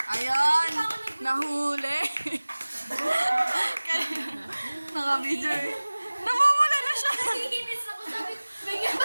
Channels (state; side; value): inverted; both; correlation -1.00